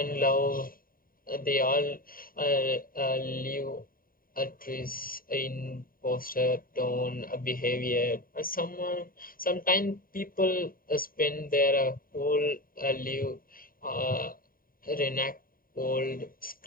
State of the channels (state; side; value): late; right; 0.41 ms